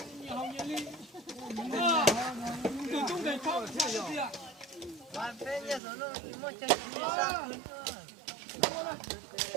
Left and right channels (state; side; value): drops out; left; at 5.8 s